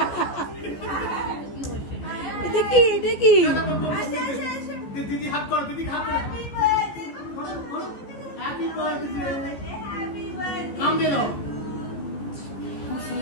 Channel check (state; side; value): late; right; 14 ms